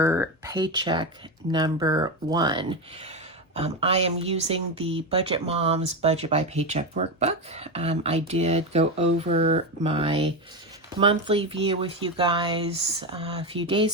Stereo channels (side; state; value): both; normal; correlation 0.14